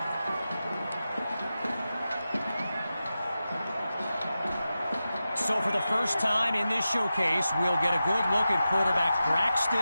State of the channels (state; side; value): inverted; both; correlation -0.92